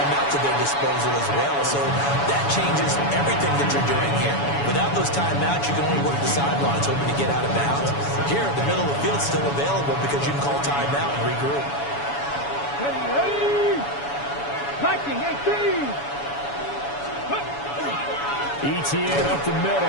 at their disposal as well. So that changes everything that you're doing here. Without those timeouts, you can only work the sidelines, hoping to get out of bounds. Here, the middle of the field is still available because you can call timeout and regroup. Ready, 19, 18. ETN up the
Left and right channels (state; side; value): late; right; 7.1 ms